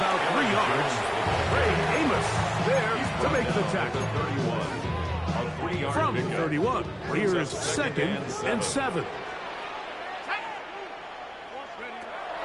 3 yards. Ray Amos there to make the tackle. From the 31, here's 2nd and 7.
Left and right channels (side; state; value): both; identical; correlation 1.00